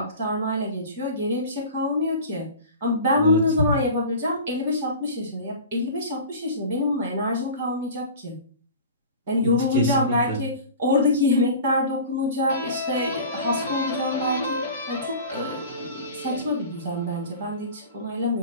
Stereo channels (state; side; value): inverted; both; correlation -0.38